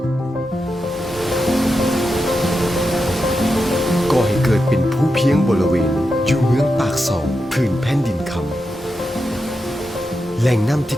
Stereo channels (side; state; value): both; normal; correlation 0.88